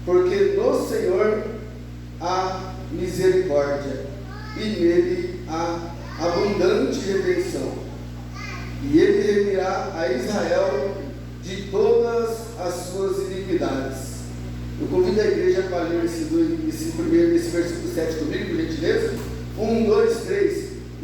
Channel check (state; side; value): identical; both; correlation 1.00